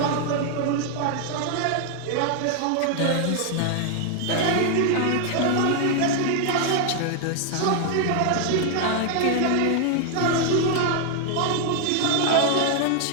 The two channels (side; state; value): both; different; correlation 0.00